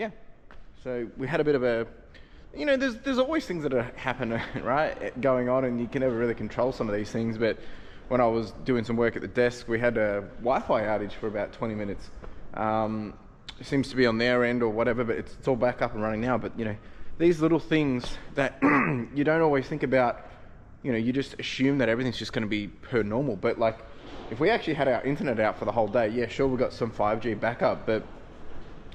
yeah, so we had a bit of a, there's always things that happen, right, going on, and you can never really control some of these things. But when I was doing some work at the desk, we had a Wi-Fi outage for about 20 minutes. It seems to be on their end or whatever, but it's all back up and running now. But these little things that you don't always think about, you just assume that everything's just going to be per normal. But like, if we actually had our internet out for the whole day, yeah, sure, we got some 5G backup, but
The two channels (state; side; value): identical; both; correlation 1.00